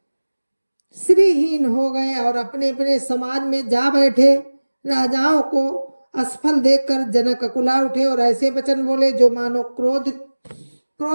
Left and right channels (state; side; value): inverted; both; correlation -1.00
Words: श्रीहीन हो गए और अपने अपने समाज में जा बैठे। राजाओं को असफल देखकर जनक अकुला उठे और ऐसे वचन बोले जो मानो